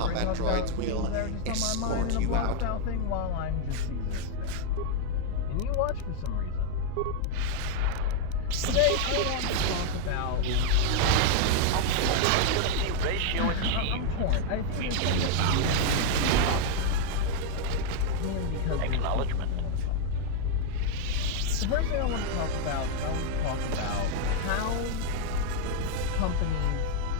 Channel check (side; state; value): both; different; correlation 0.01